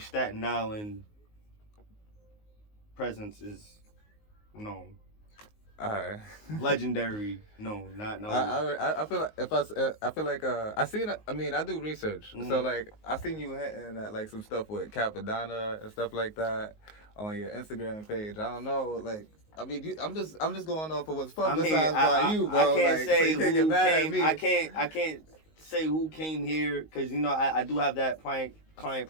Island presence is known. Alright. Legendary. No, not no. I feel like I feel like I seen I mean I do research, so like I seen you hitting at like some stuff with Cappadonna and stuff like that on your Instagram page. I don't know, like I mean I'm just going off of what's publicized by you, bro. I can't like, say so you can't get who mad at came. me. I can't say who came here because you know I do have that client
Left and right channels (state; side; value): late; right; 19 ms